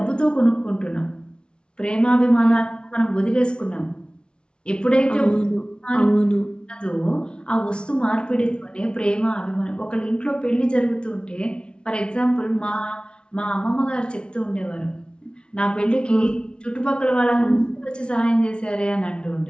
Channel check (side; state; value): right; late; 0.057 ms